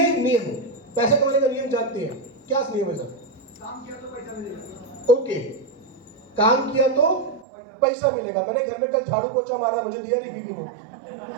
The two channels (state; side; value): drops out; left; at 7.5 s